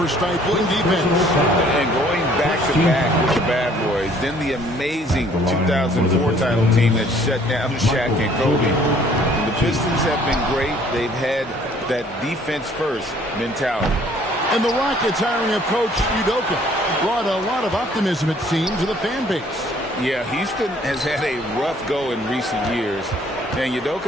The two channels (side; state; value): both; normal; correlation 0.58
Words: stifling defense. And going back-to-back with the bad boys. Then the amazing 2004 title team that shut down Shaq and Kobe. The Pistons have been great. They've had that defense-first mentality. And the Rockets hiring of Coach Udoka brought a lot of optimism, it seems, to the fan base. Yeah, Houston has had a rough go in recent years. And